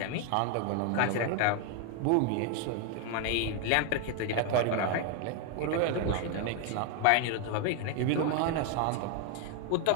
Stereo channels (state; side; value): different; both; correlation 0.01